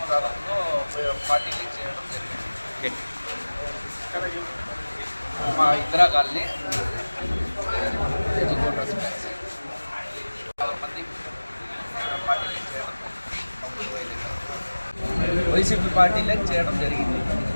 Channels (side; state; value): both; inverted; correlation -1.00